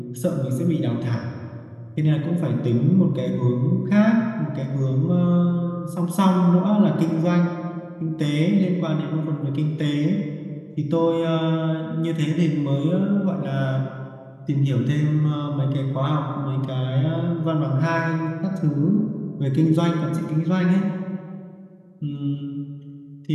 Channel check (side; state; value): both; identical; correlation 1.00